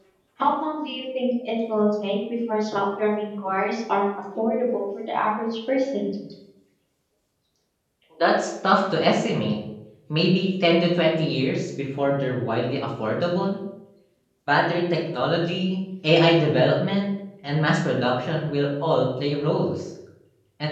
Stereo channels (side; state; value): both; identical; correlation 1.00